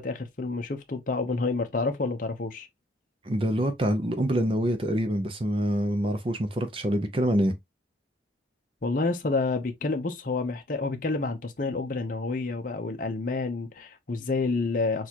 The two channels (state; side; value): normal; both; correlation 0.60